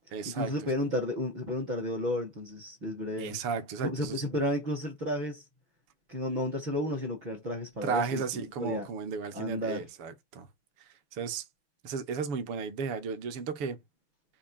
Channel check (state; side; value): late; left; 6.9 ms